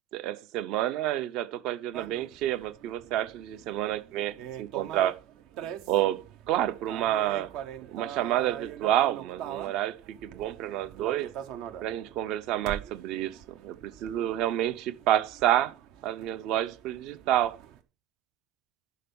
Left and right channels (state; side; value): quieter; left; 12.3 dB